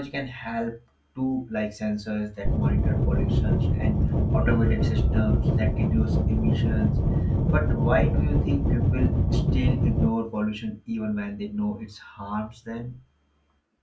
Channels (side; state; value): both; identical; correlation 1.00